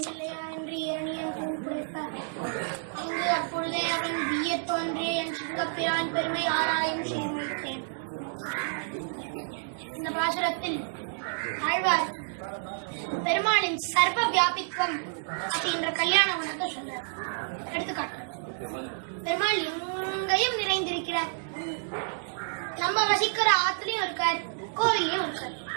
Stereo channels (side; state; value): left; silent; digital silence